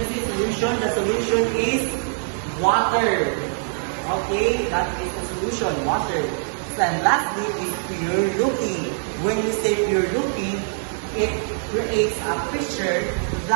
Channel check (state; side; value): silent; left; 63 dB below the other